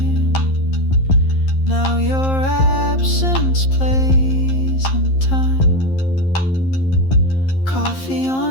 Now your absence plays in time. Coffee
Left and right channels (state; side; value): late; right; 11 ms